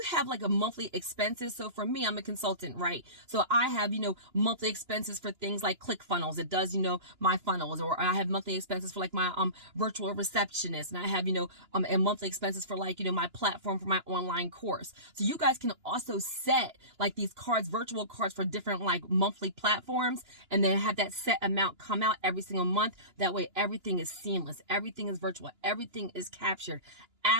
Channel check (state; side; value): late; left; 2.9 ms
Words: have like a monthly expenses. So for me, I'm a consultant, right? So I have, monthly expenses for things like ClickFunnels. It does, my funnels, or I have monthly expenses for like my virtual receptionist. And I have, and monthly expenses for like, my platform for my online course. So you guys can also set like these cards, virtual cards for different like monthly platforms, and then have that set amount come out every single month. That way everything is seamless. Everything is virtual. Everything is captured.